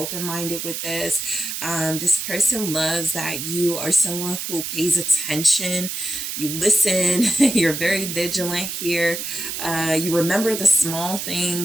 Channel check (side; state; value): right; noise; hiss, 5 dB below the sound